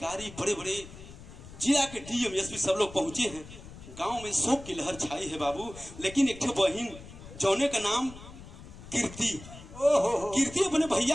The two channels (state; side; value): noise; left; rumble, 16 dB below the sound